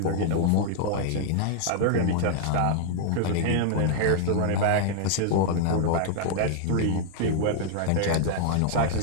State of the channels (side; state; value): both; different; correlation -0.01